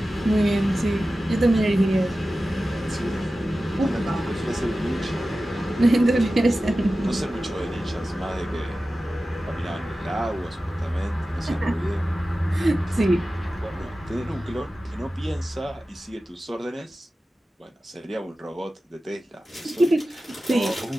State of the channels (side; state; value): both; normal; correlation 0.95